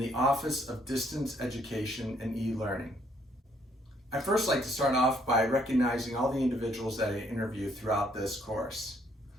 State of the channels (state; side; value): normal; both; correlation 0.67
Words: Office of Distance Education and E-Learning. I'd first like to start off by recognizing all the individuals that I interviewed throughout this course.